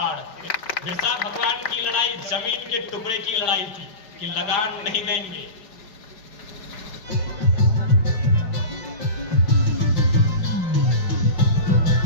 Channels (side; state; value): right; late; 5.0 ms